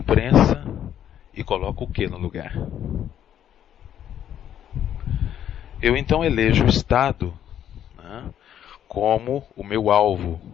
e coloco o que no lugar? Eu então elejo o Estado, né, como o meu alvo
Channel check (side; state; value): right; quieter; 10.3 dB